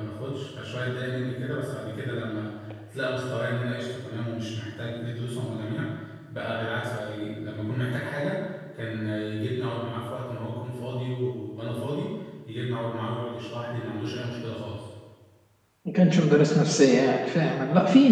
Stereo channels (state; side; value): identical; both; correlation 1.00